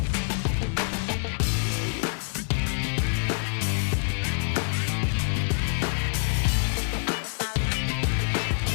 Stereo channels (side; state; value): right; silent; 58 dB below the other